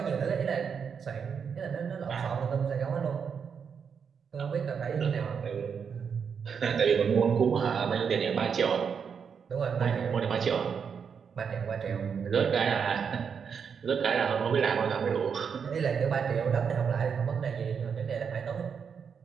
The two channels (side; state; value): left; quieter; 6.6 dB